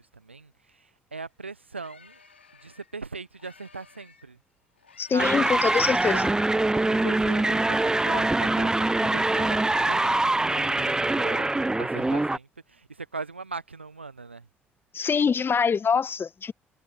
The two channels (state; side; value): normal; both; correlation 0.81